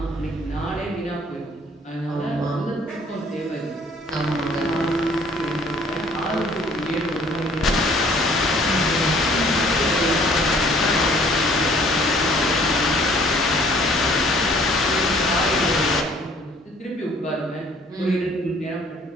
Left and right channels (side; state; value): both; normal; correlation 0.57